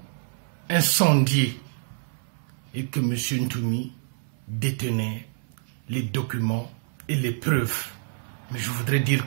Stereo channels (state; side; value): silent; left; 60 dB below the other